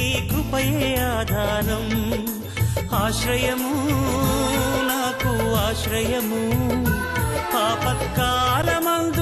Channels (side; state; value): both; identical; correlation 1.00